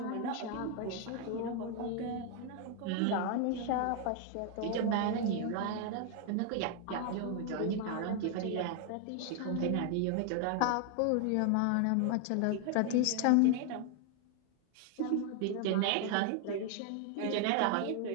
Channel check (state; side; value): different; both; correlation 0.00